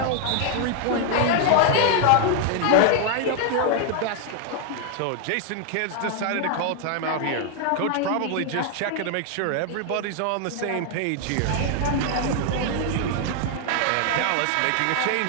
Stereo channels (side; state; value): both; different; correlation 0.00